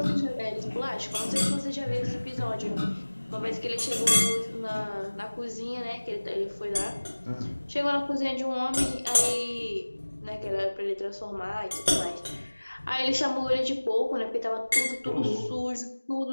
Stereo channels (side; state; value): both; inverted; correlation -1.00